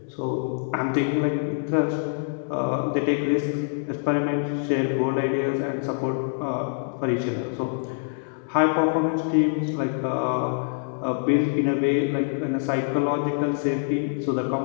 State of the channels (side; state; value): right; silent; digital silence